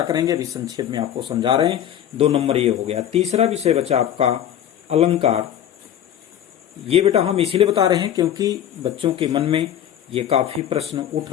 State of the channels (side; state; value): right; quieter; 10.5 dB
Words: करेंगे, अभी संक्षेप में आपको समझा रहे हैं। 2 नंबर ये हो गया। तीसरा विषय बचा आपका अलंकार। ये बेटा हम इसीलिए बता रहे हैं क्योंकि बच्चों के मन में ये काफी प्रश्न उठ